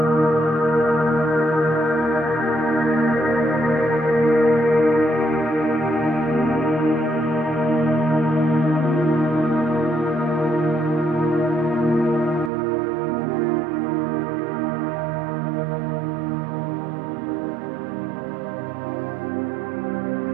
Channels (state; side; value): drops out; left; at 12.5 s